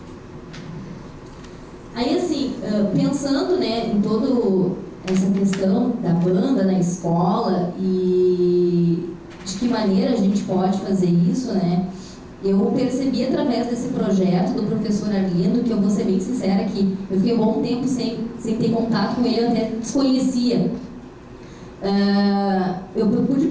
aí assim, pensando, né, em toda essa questão da banda na escola e de que maneira a gente pode fazer isso, né, eu percebi através desse projeto do professor Arlindo, que eu vou ser bem sincera que eu fiquei um bom tempo sem ter contato com ele, eu até desconhecia. Eu pude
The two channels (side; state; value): both; identical; correlation 1.00